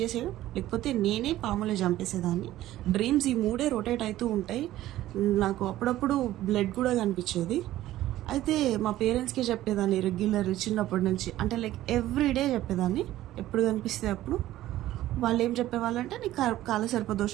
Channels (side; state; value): left; quieter; 14.6 dB